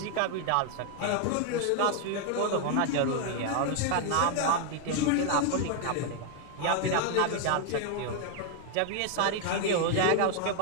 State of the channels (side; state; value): both; different; correlation 0.00